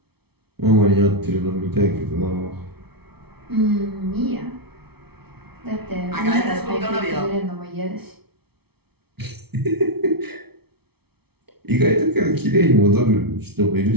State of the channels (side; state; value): left; late; 0.97 ms